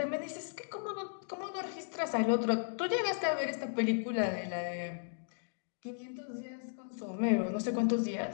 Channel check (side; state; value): right; silent; digital silence